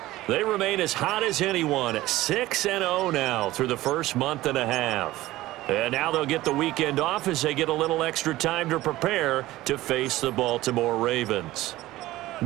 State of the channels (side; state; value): left; quieter; 16.8 dB